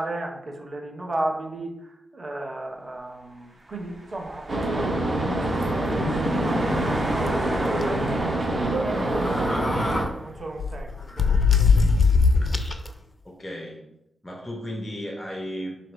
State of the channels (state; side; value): normal; both; correlation 0.78